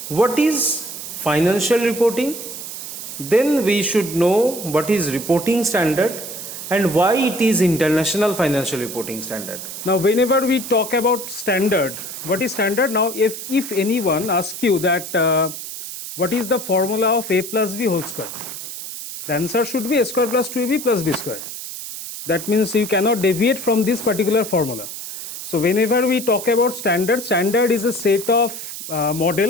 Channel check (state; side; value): noise; right; hiss, 9 dB below the sound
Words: what is financial reporting, then we should know what is reporting standard and why it is International Financial Reporting Standard. Now whenever we talk about standard, what is standard? Now if anyone asks you that what is the formula of a plus b whole square, the answer should be a square plus 2ab plus b square. That means you cannot deviate from this particular formula. So whenever we talk about standard, standard is a set of